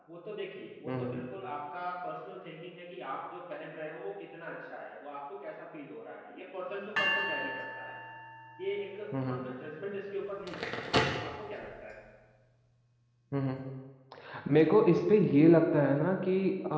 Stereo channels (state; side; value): identical; both; correlation 1.00